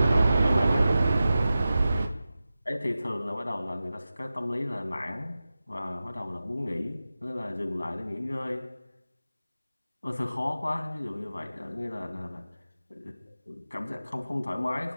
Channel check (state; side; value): inverted; both; correlation -0.94